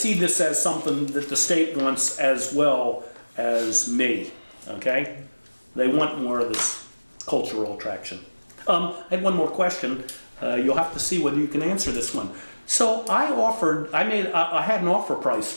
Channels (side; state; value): both; inverted; correlation -1.00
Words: this as something that the state wants as well as me, okay? They want more of this cultural attraction. I had one more question. You'll have to see whether you can answer this one. So I had an offer price